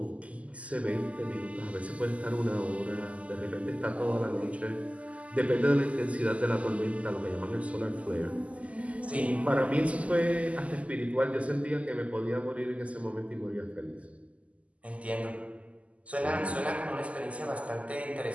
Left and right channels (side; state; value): left; late; 0.067 ms